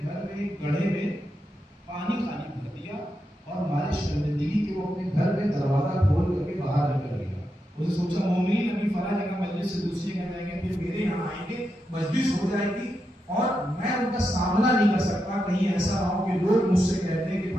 گھر میں ایک گڑھے میں پانی خالی بھر دیا اور ہمارے شرمندگی کے وہ اپنے گھر میں دروازہ کھول کر کے باہر نکل گیا. اسے سوچا مومنین ابھی فلاں جگہ مجلس سے دوسری جگہ جائیں گے، پھر میرے یہاں آئیں گے، مجلس ہو جائے گی اور میں ان کا سامنا نہیں کر سکتا. کہیں ایسا نہ ہو کہ لوگ مجھ سے کہتے ہیں کہ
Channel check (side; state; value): both; normal; correlation 0.86